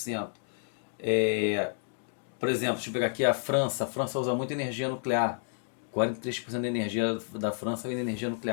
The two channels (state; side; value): silent; right; 58 dB below the other